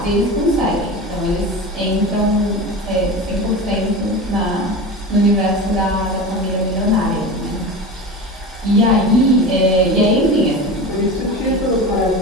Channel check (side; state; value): both; normal; correlation 0.29